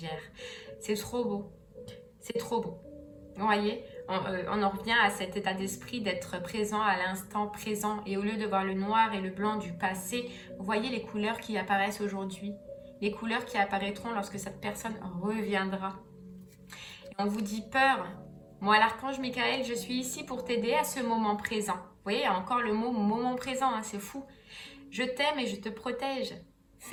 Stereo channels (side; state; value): both; identical; correlation 1.00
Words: C'est trop beau. C'est trop beau. Vous voyez, on en revient à cet état d'esprit d'être présent à l'instant présent. Et au lieu de voir le noir et le blanc du passé, vous voyez les couleurs qui apparaissent aujourd'hui. Les couleurs qui apparaîtront lorsque cette personne reviendra. Et on vous dit peur. Moi, l'archange Michael, je suis ici pour t'aider à ce moment présent. Vous voyez, il y a encore le mot moment présent, hein, c'est fou. Je t'aime et je te protège.